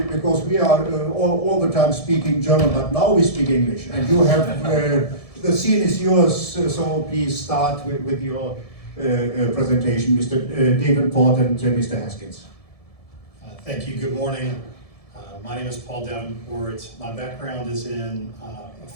we are all the time speaking German, but now we speak English, and you have the scene is yours. So please start with your presentation, Mr. Davenport and Mr. Haskins. Thank you. Good morning. My name is Paul Davenport. My background is in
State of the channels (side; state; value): right; late; 1.7 ms